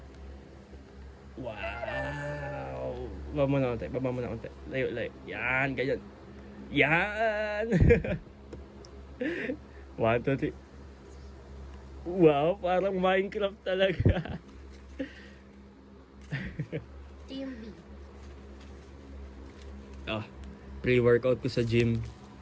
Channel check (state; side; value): identical; both; correlation 1.00